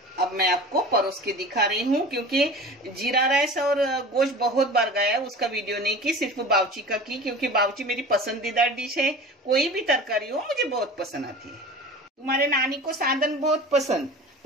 अब मैं आपको परोस के दिखा रही हूँ क्योंकि जीरा राइस और गोश्त बहुत बार गया, उसका वीडियो नहीं की, सिर्फ बाउची का की क्योंकि बाउची मेरी पसंदीदा डिश है। कोई भी तरकारी हो मुझे बहुत पसंद आती है। तुम्हारे नानी को साधन बहुत पसंद,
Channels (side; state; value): both; normal; correlation 0.37